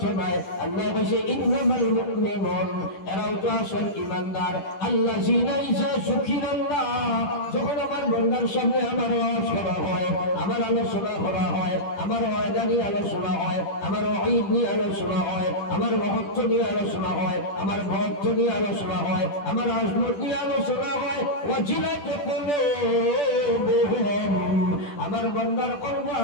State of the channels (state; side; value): late; right; 10 ms